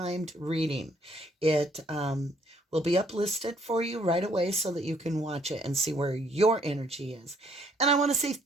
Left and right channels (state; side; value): normal; both; correlation 0.66